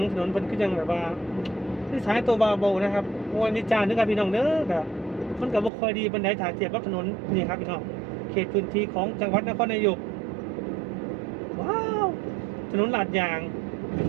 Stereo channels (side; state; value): left; drops out; at 5.7 s